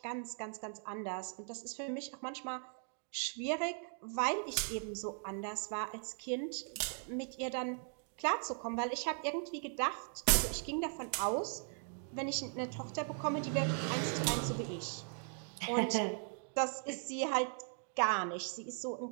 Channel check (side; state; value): left; silent; 52 dB below the other